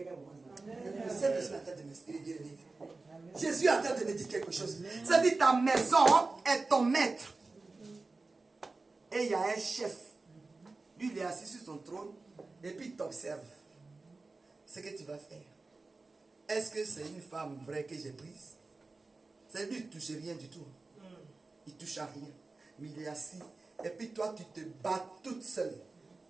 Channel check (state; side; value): quieter; left; 3.6 dB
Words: voit ça? Le Saint-Esprit est en train de m'expliquer. Jésus est en train de me dire quelque chose. C'est-à-dire ta maison est ton maître. Et il y a un chef. Lui, il est assis sur son trône. Et puis il t'observe. Ce que tu vas faire. Est-ce que c'est une femme vraie que j'ai prise? C'est lui, il ne touche rien du tout. Il ne touche à rien. Mais il est assis. Et puis toi, tu te bats toute seule.